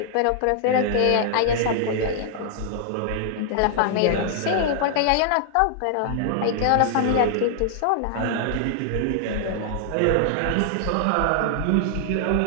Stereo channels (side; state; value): both; different; correlation -0.01